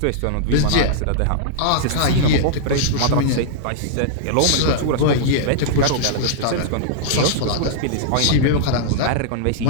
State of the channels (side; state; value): both; different; correlation -0.02